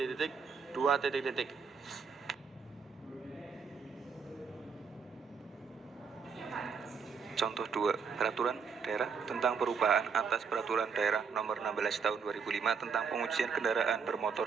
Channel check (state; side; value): quieter; left; 5.8 dB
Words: titik 2 titik titik. Contoh 2, Peraturan Daerah tentang perubahan atas Peraturan Daerah Nomor 16 Tahun 2005 tentang pengujian kendaraan